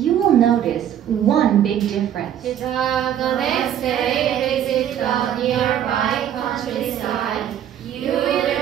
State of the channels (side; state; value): left; quieter; 10.2 dB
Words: will notice one big difference. 시작. The next day, visit the nearby countryside. You